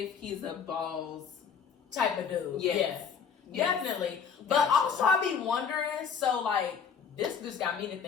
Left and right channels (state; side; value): quieter; right; 6.7 dB